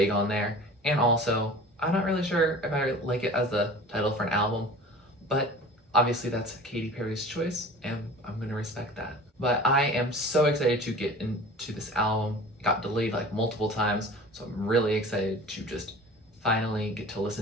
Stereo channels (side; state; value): both; normal; correlation 0.41